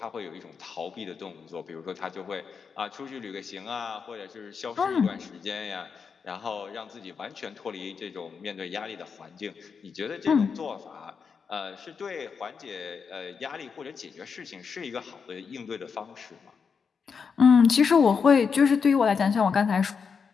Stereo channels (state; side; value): quieter; right; 5.9 dB